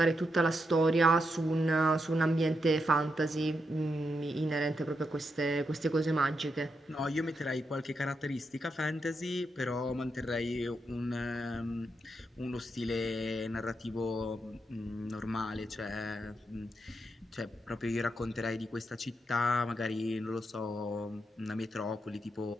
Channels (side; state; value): both; normal; correlation 0.83